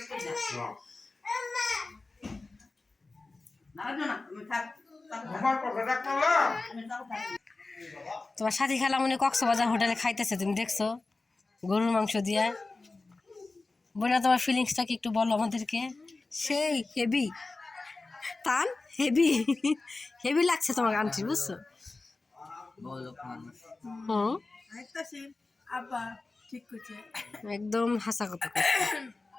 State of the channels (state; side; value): quieter; right; 3.5 dB